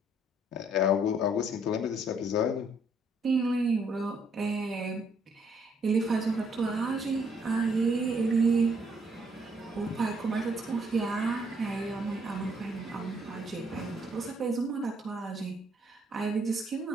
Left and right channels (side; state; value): both; normal; correlation 0.68